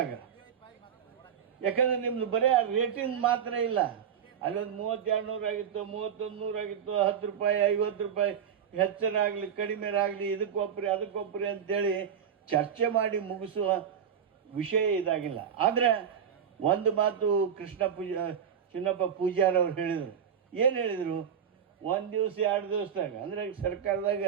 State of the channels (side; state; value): left; quieter; 8.0 dB